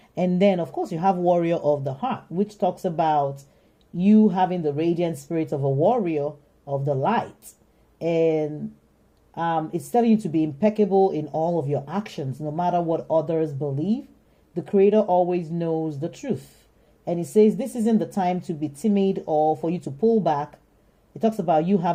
And then, of course, you have warrior of the heart, which talks about you having the radiant spirit of a warrior of the light. And it's telling you to be impeccable in all of your actions, no matter what others believe. The Creator always knows the truth. And it says this isn't the time to be timid or for you to pull back. It talks about you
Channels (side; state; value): both; identical; correlation 1.00